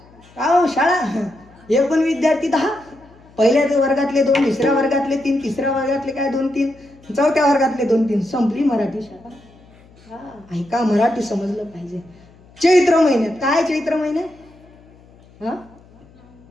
का हो शाळा, एकूण विद्यार्थी 10, पहिल्या वर्गातले 2, दुसऱ्या वर्गातले 3, तिसऱ्या वर्गातले काय 2-3, चौथ्या वर्गातले 2-3, संपली मराठी शाळा. ऐका, मराठी समजलं पाहिजे. चैत्र महिन्यात काय, चैत्र महिन्यात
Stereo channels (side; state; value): left; noise; hum, 26 dB below the sound